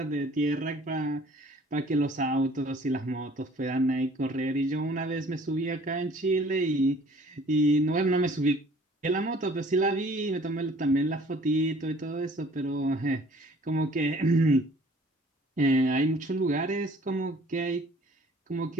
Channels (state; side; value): normal; both; correlation 0.53